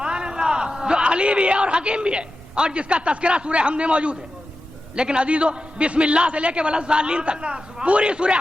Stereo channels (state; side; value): normal; both; correlation 0.92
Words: جو علی بھی ہے اور حکیم بھی ہے، اور جس کا تذکرہ سورہ حمد میں موجود ہے. لیکن عزیزو، بسم اللہ سے لے کے ولضالین تک پوری سورہ